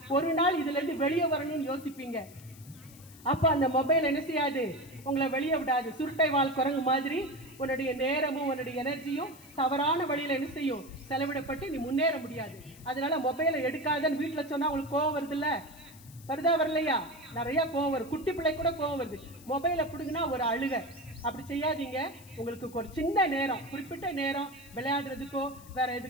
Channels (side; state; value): left; noise; hiss, 21 dB below the sound